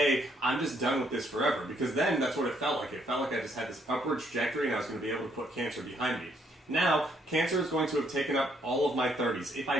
I'm just done with this forever, because then that's what it felt like. It felt like I just had this upward trajectory and I was going to be able to put cancer behind me. Now, cancer is going to have taken up all of my 30s, if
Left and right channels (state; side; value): normal; both; correlation 0.70